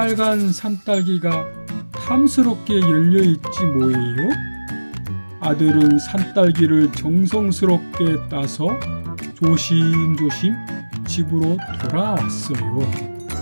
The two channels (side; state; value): both; inverted; correlation -1.00